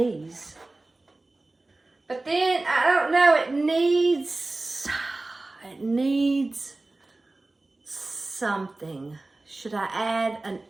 But then, I don't know, it needs something. Should I add an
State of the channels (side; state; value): left; quieter; 3.0 dB